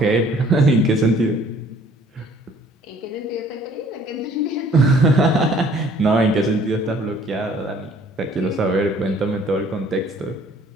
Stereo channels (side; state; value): both; normal; correlation 0.57